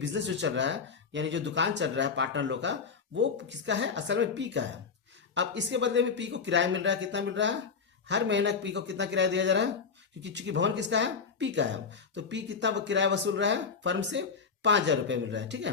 जो चल रहा है यानी जो दुकान चल रहा है पार्टनर लोग का, वो किसका है? असल में पी का है। अब इसके बदले में पी को किराया मिल रहा है, कितना मिल रहा है? हर महीना पी को कितना किराया दिया जा रहा है? क्योंकि चूंकि भवन किसका है? पी का है। तो पी कितना किराया वसूल रहा है फर्म से? 5,000 रुपये मिल रहा है, ठीक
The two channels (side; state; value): right; quieter; 5.5 dB